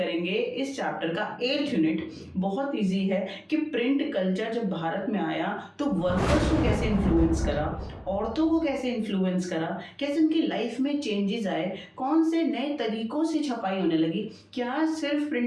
इस चैप्टर का 8th यूनिट। बहुत इजी है कि प्रिंट कल्चर जब भारत में आया तो वर्कर्स को कैसे इन्फ्लुएंस करा, औरतों को कैसे इन्फ्लुएंस करा, कैसे उनकी लाइफ में चेंजेस आए, कौन से नए तरीकों से छपाई होने लगी। क्या सिर्फ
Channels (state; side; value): identical; both; correlation 1.00